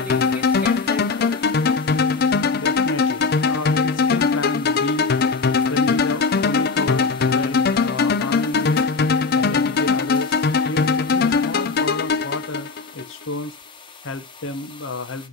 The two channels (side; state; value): right; quieter; 4.4 dB